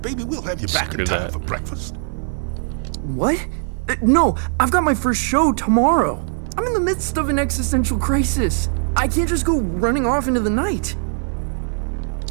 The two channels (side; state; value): left; silent; digital silence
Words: baby, we'll have you back in time for breakfast. What? No, I've got my first show tomorrow. I'm in the midst of an existential crisis. I can't just go running off into the night.